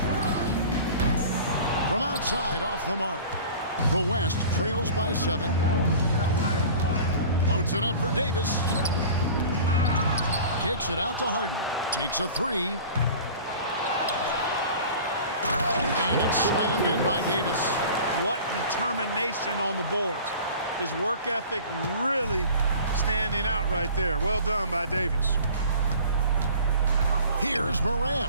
From outside, off the mark. The West trails by 7. Loads it up for Davis. Kicks it out to Harden. Takes a three. And it's slammed in by Davis. What determination on the boards. His work ethic really standing out right there. Well done by Davis. Here's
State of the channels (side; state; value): both; inverted; correlation -0.41